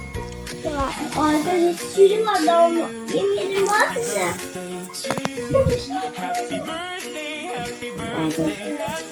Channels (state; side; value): identical; both; correlation 1.00